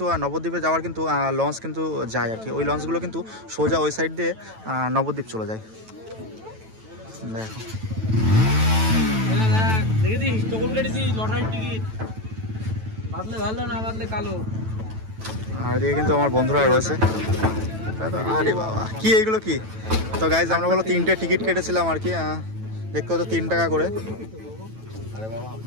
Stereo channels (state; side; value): late; left; 9.1 ms